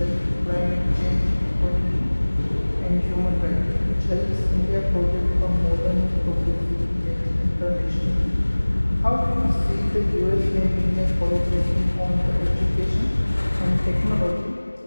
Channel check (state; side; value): inverted; both; correlation -1.00